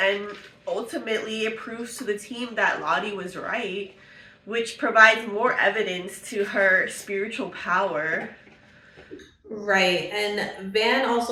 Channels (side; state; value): both; identical; correlation 1.00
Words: ultimately it proves to the team that Lottie was right, which provides more evidence to her spiritual power. Right, and Van